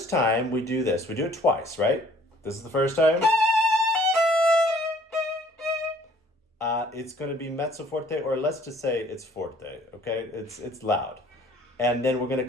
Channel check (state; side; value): normal; both; correlation 0.57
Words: time we do this, we do it twice, right? This is the first time. It's going to be mezzo forte, or let's just say it's forte, okay? It's loud. And then we're going to